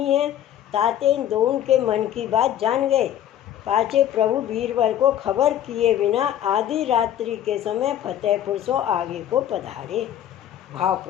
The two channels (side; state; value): right; quieter; 11.0 dB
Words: हैं, ताते इन दोनों के मन की बात जान गए। पाचे प्रभु बीरबल को खबर किए बिना आधी रात्रि के समय फतेहपुर सो आगे को पधारे। भाव